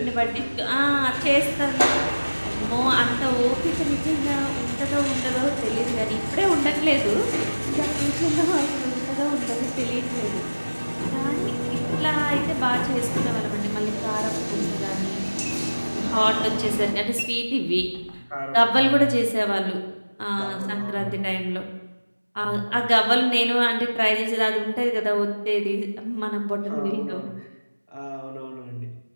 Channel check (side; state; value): both; inverted; correlation -1.00